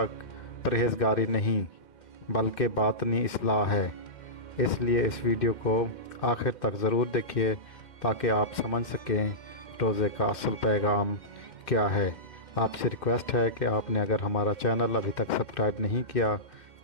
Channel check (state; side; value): late; right; 2.1 ms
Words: नहीं, बल्कि बातनी इस्लाह है। इसलिए इस वीडियो को आखिर तक ज़रूर देखिए ताकि आप समझ सकें रोज़े का असल पैगाम क्या है। आपसे रिक्वेस्ट है कि आपने अगर हमारा चैनल अभी तक सब्सक्राइब नहीं किया